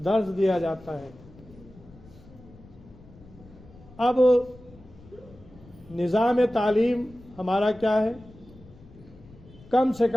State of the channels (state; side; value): noise; left; rumble, 22 dB below the sound